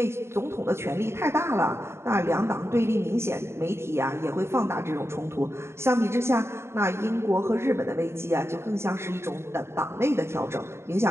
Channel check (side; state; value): left; late; 0.12 ms